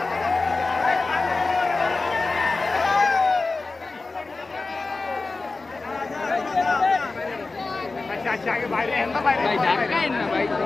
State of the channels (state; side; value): quieter; right; 3.7 dB